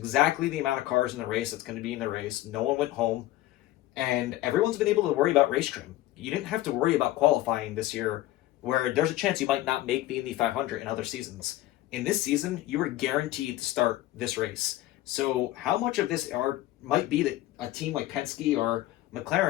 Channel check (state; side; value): quieter; right; 15.4 dB